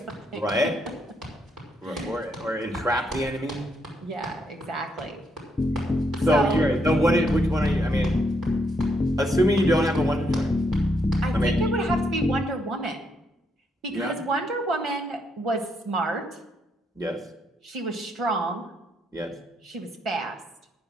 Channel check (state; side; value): normal; both; correlation 0.76